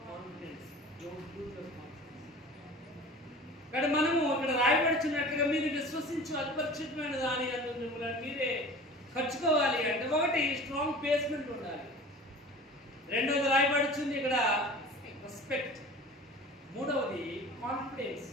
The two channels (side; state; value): both; normal; correlation 0.40